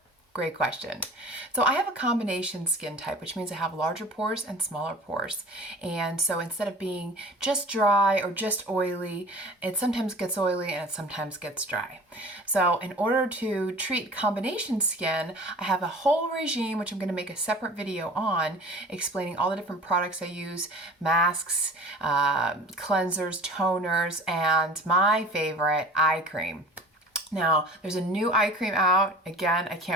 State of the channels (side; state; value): both; normal; correlation 0.42